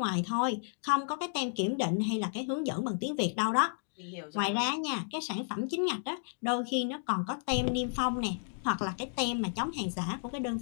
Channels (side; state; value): right; silent; digital silence